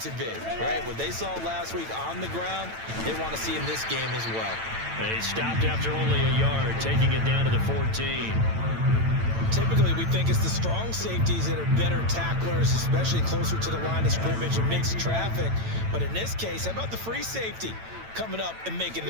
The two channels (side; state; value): left; late; 9.0 ms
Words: to be, right? What they saw last week on the ground, they want to see in this game as well. They stopped after only a yard, taking it down to the 14. Typically, we think it's the strong safeties that are better tacklers, especially closer to the line of scrimmage amidst traffic. But in this case, how about the free safety coming up and making